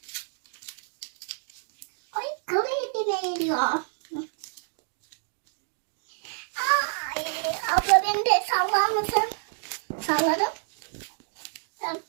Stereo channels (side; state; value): left; silent; 59 dB below the other